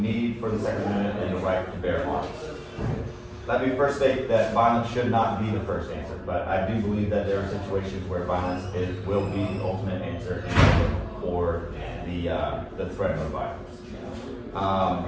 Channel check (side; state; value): both; identical; correlation 1.00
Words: for the Second Amendment and the right to bear arms. Let me first state that violence should not be the first answer, but I do believe that there are situations where violence will be the ultimate answer for the threat of violence.